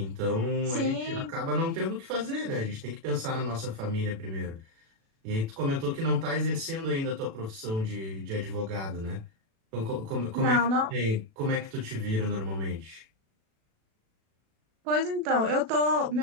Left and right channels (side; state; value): left; late; 36 ms